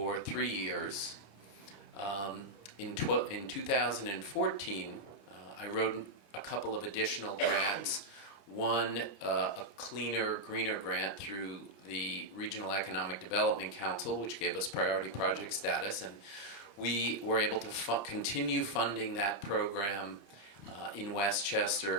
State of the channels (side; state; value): right; late; 26 ms